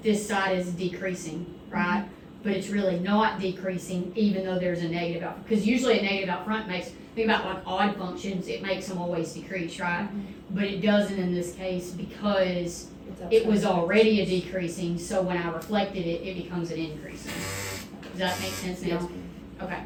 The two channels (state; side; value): identical; both; correlation 1.00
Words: this side is decreasing, right? But it's really not decreasing even though there's a negative out, because usually a negative out front makes, think about like odd functions, it makes them always decrease, right? But it doesn't in this case because it was already a decreasing, so when I reflected it, it becomes an increasing. Does that make sense now? Okay.